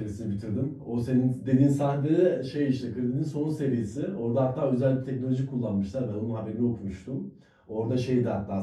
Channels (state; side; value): identical; both; correlation 1.00